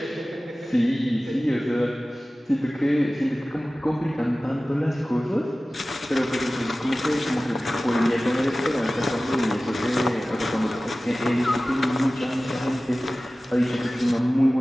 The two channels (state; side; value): normal; both; correlation 0.97